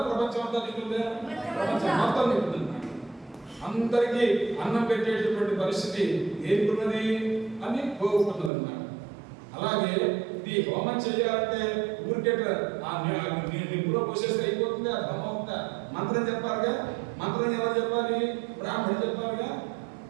ప్రపంచం అంతా తింటుందా? ప్రపంచం మొత్తం తింటుంది. అందరికీ అన్నం పెట్టేటటువంటి పరిస్థితి ఏర్పడినది అని కోరుకున్నది అన్నమాట. అలాగే ఈ హోమం చేయాలంటే ఊరికే నిప్పులో నీటిలో పోసేస్తే అయిపోతుంది, అది బ్రహ్మ అవుతుందా? మంత్రం చెప్పాలిగా. మంత్రం ఎవరు చెప్పాలి? బ్రాహ్మణుడు చెప్పాలిగా.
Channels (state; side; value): drops out; left; at 8.5 s